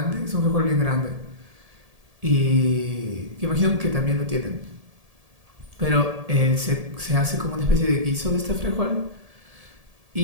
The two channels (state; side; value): late; left; 1.7 ms